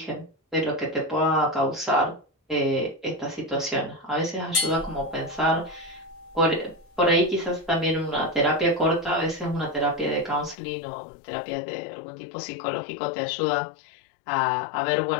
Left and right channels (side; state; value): right; drops out; at 10.6 s